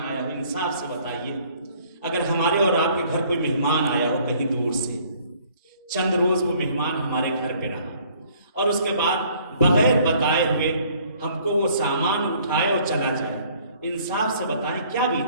آیا ہو, انصاف سے بتائیے, اگر ہمارے اور آپ کے گھر کوئی مہمان آیا ہو کہیں دور سے, چند روز وہ مہمان ہمارے گھر پہ رہا اور اس کے بعد بغیر بتائے ہوئے ہم کو وہ سامان اٹھائے اور چلا جائے, انصاف سے بتائیں کیا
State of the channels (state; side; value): inverted; both; correlation -0.59